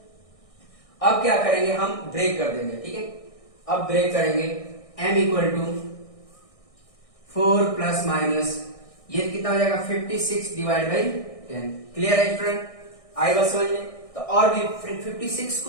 अब क्या करेंगे हम ब्रेक कर देंगे, ठीक है। अब ब्रेक करेंगे m equal to 4 plus minus, ये कितना हो जाएगा 56 डिवाइड बाई 10। क्लियर है स्टूडेंट, आई बात समझ में। तो और भी 56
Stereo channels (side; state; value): right; late; 1.6 ms